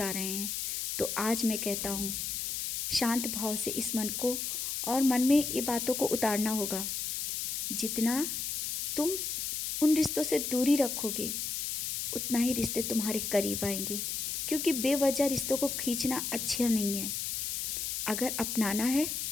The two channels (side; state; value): left; noise; hiss, 2 dB below the sound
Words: रहे हैं। तो आज मैं कहता हूँ, शांत भाव से इस मन को और मन में ये बातों को उतारना होगा। जितना तुम उन रिश्तों से दूरी रखोगे, उतना ही रिश्ते तुम्हारे करीब आएंगे। क्योंकि बेवजह रिश्तों को खींचना अच्छा नहीं है। अगर अपनाना है